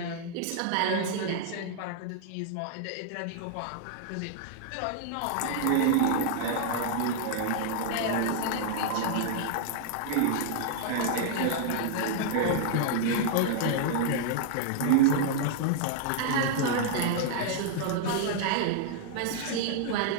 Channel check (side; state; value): both; different; correlation -0.01